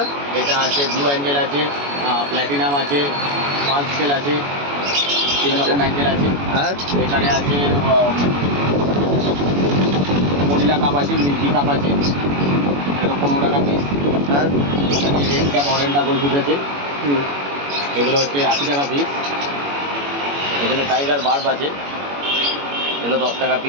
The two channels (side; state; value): left; late; 21 ms